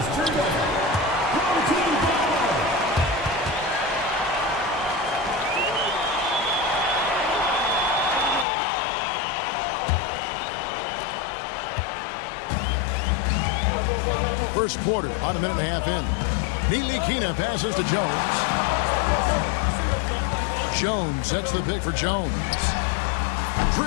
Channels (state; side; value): drops out; right; at 8.5 s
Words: First quarter, about a minute and a half in. Ntilikina passes to Jones. Jones sets the pick for Jones.